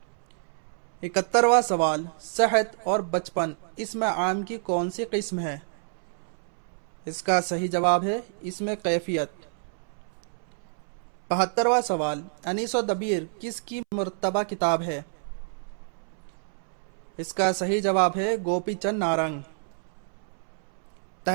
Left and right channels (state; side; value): silent; left; 59 dB below the other